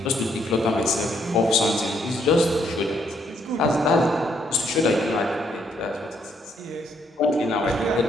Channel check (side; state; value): both; normal; correlation 0.72